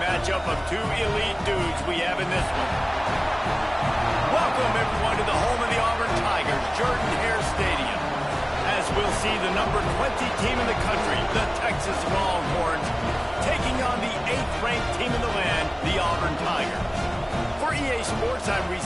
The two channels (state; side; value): identical; both; correlation 1.00